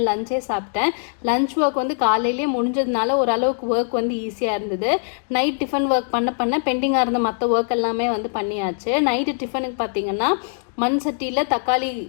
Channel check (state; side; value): silent; right; digital silence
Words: லஞ்சே சாப்பிட்டேன். லஞ்ச் ஒர்க் வந்து காலையிலேயே முடிஞ்சதுனால ஓரளவுக்கு ஒர்க் வந்து ஈஸியாக இருந்தது. நைட் டிஃபன் ஒர்க் பண்ண பெண்டிங்காக இருந்த மற்ற ஒர்க் எல்லாமே வந்து பண்ணியாச்சு. நைட்டு டிஃபனுக்கு பார்த்தீங்கன்னா மண் சட்டியில் தக்காளி